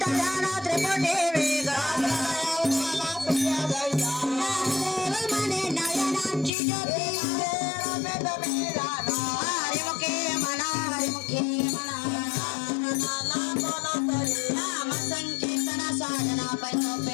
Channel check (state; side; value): drops out; right; at 6.5 s